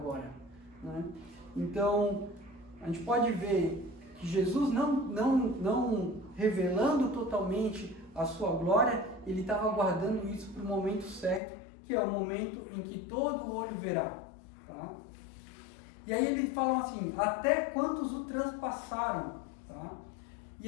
né? Então, a gente pode ver que Jesus não revelando totalmente a sua glória, ele estava guardando isso para o momento certo, que é o momento em que todo olho verá. Tá? E aí ele fala assim, até quantos o transpassaram, tá?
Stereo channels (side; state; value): right; drops out; at 11.4 s